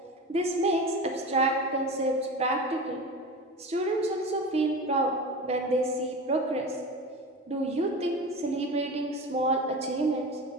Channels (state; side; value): normal; both; correlation 0.30